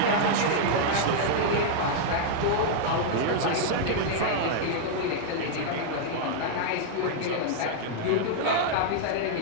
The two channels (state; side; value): different; both; correlation -0.01